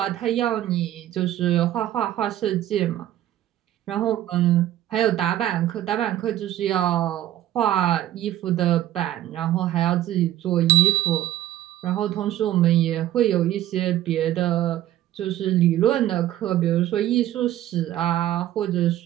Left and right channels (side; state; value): left; quieter; 13.1 dB